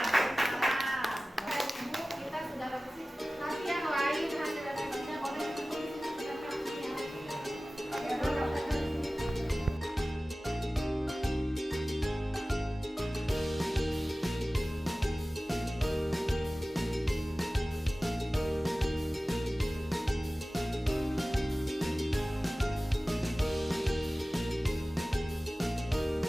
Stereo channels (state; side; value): normal; both; correlation 0.97